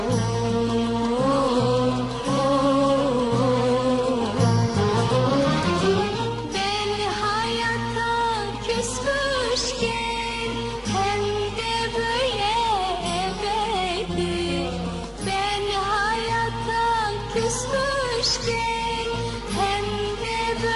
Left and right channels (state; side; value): identical; both; correlation 1.00